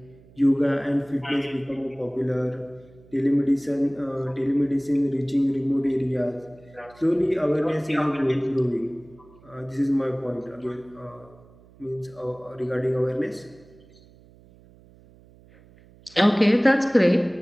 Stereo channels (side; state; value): right; noise; hum, 26 dB below the sound